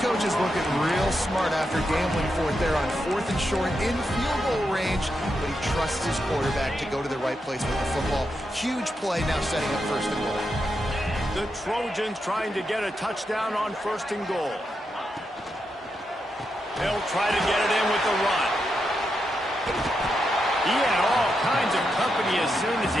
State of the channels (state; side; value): normal; both; correlation 0.85